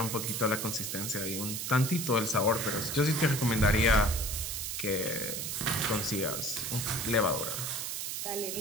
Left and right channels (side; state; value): right; noise; hiss, 3 dB below the sound